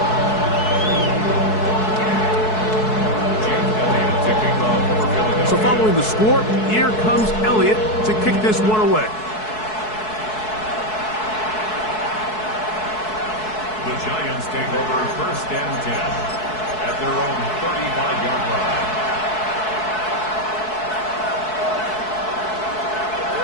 Jake Elliott to kick off for Philadelphia. So following the score, here comes Elliott to kick this one away. The Giants take over 1st and 10 at their own 35-yard line.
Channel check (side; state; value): right; late; 4.6 ms